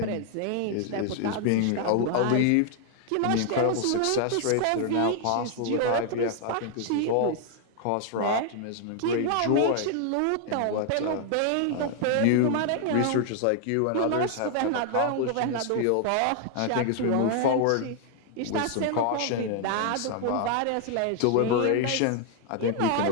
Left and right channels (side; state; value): both; different; correlation 0.00